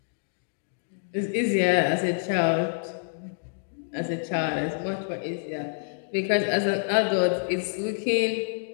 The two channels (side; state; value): right; silent; digital silence